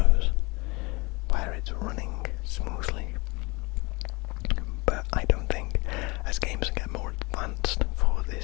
where it's running smoothly, but I don't think, as games get more advanced for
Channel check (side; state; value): right; quieter; 25.9 dB